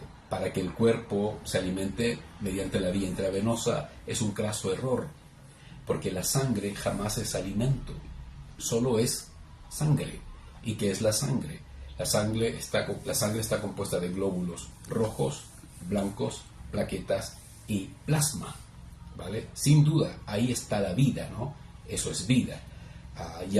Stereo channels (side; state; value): both; identical; correlation 1.00